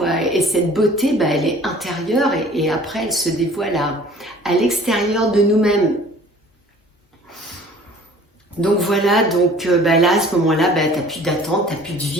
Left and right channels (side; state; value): both; normal; correlation 0.50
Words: Et cette beauté, elle est intérieure, et après, elle se dévoile à l'extérieur de nous-mêmes. Donc voilà, donc là, à ce moment-là, t'as plus d'attente, t'as plus de